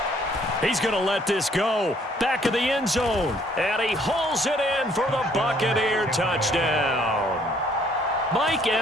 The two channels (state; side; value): normal; both; correlation 0.64